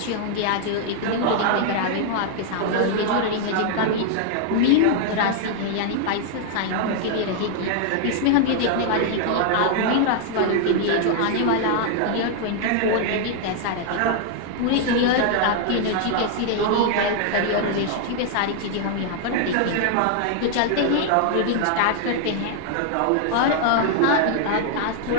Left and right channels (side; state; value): both; different; correlation 0.00